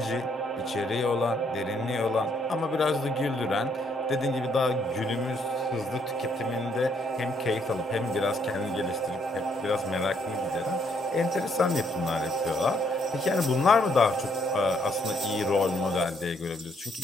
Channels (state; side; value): normal; both; correlation 0.70